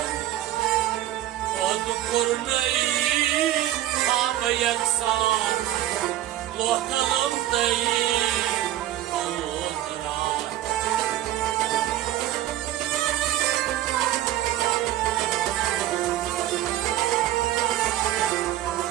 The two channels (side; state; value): left; quieter; 13.4 dB